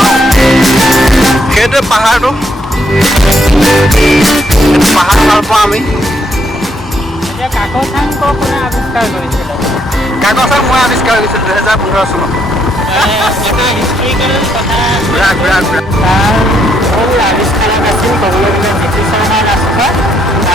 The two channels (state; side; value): normal; both; correlation 0.74